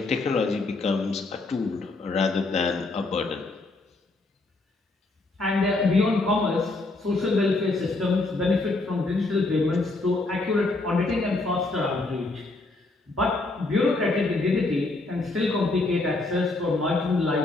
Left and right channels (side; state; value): right; quieter; 3.2 dB